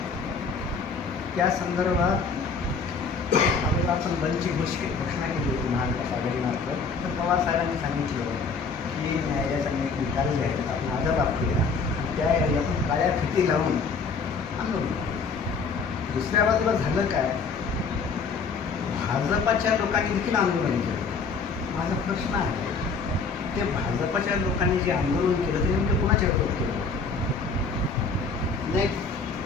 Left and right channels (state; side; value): quieter; right; 4.9 dB